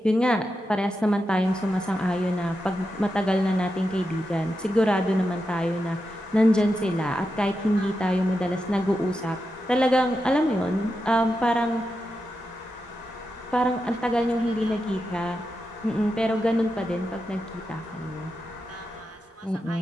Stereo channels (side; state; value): both; normal; correlation 0.88